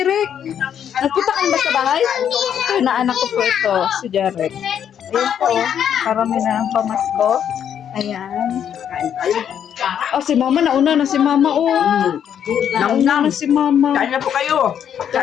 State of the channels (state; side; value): quieter; right; 9.0 dB